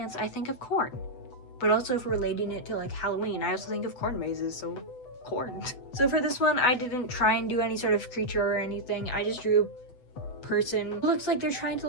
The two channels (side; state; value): right; late; 8.0 ms